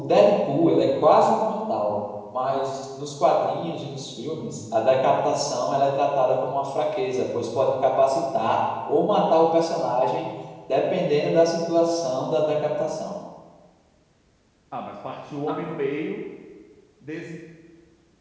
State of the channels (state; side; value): identical; both; correlation 1.00